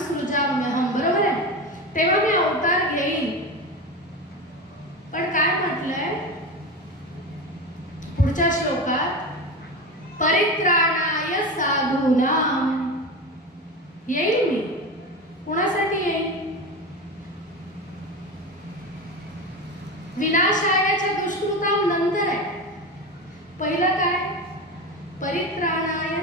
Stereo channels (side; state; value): both; normal; correlation 0.23